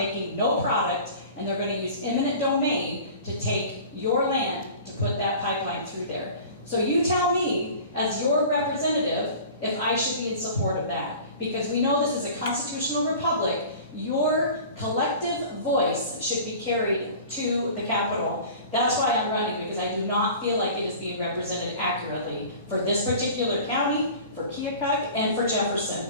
no product, and they're going to use eminent domain to take your land to put that pipeline through there. So you tell me, as your representative, if I should be in support of that. Because we know this is a constitutional republic. Your collective voice should be carried to the Capitol. That's why I'm running, because I do not feel like it is being represented accurately for this particular county, for Keokuk, and for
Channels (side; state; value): both; inverted; correlation -0.41